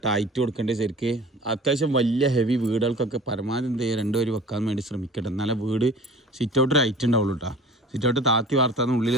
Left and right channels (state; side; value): normal; both; correlation 0.43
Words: ഹൈറ്റ് കൊടുക്കേണ്ടത്. ശരിക്ക് അത്യാവശ്യം വലിയ ഹെവി വീടുകൾക്കൊക്കെ പരമാവധി എന്ത് ചെയ്യുക 2 വരി വെക്കാൻ വേണ്ടി ശ്രമിക്കട്ടെ. എന്നാലേ വീട് സിറ്റ് ഔട്ടൊരു ഹൈറ്റ് ഉണ്ടാവുള്ളൂ കേട്ടോ. സിറ്റ് ഔട്ട് താത്തി വാർത്താന്ന് ഉള്ളിൽ